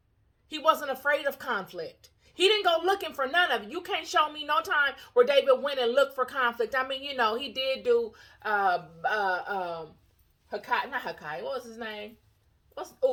he wasn't afraid of conflict. He didn't go looking for none of it. You can't show me no time where David went and looked for conflict. I mean, he did do Hakai, not Hakai, what was his name?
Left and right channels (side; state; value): both; identical; correlation 1.00